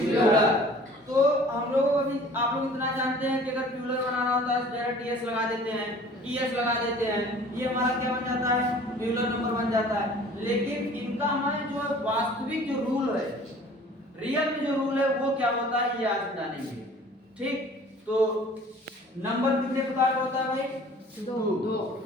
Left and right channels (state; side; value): normal; both; correlation 0.49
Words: तो हम लोग अभी आप लोग इतना जानते हैं कि अगर प्लूरल बनाना होता है डायरेक्ट एस लगा देते हैं, ईएस लगा देते हैं, ये हमारा क्या बन जाता है? प्लूरल नंबर बन जाता है। लेकिन इनका हमारे जो वास्तविक जो रूल है, रियल में जो रूल है वो क्या होता है, ये आज जानेंगे, ठीक। तो नंबर कितने प्रकार का होता है भाई? 2।